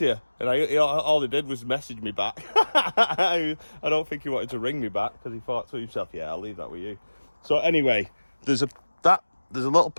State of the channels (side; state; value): both; inverted; correlation -1.00